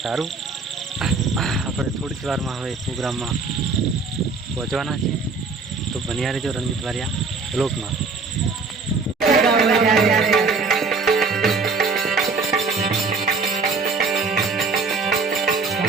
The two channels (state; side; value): quieter; left; 4.3 dB